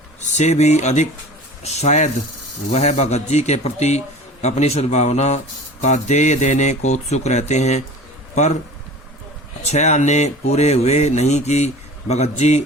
से भी अधिक शायद वह भगतजी के प्रति अपनी सद्भावना का देय देने को उत्सुक रहते हैं। पर 6 आने पूरे हुए नहीं कि भगतजी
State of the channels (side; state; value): both; normal; correlation 0.39